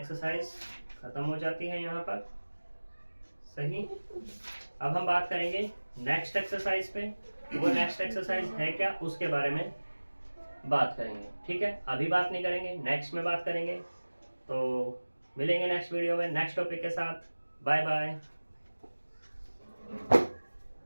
खत्म हो जाती है यहाँ पर। सही, अब हम बात करेंगे नेक्स्ट एक्सरसाइज पे। वो नेक्स्ट एक्सरसाइज है क्या, उसके बारे में बात करेंगे। ठीक है, अभी बात नहीं करेंगे, नेक्स्ट में बात करेंगे। तो मिलेंगे नेक्स्ट वीडियो में नेक्स्ट टॉपिक के साथ। Bye bye.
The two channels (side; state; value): both; inverted; correlation -1.00